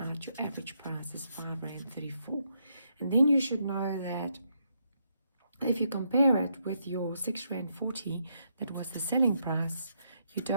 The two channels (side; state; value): both; inverted; correlation -0.77